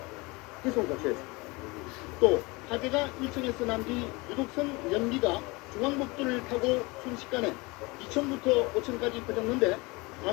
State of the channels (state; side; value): quieter; right; 24.9 dB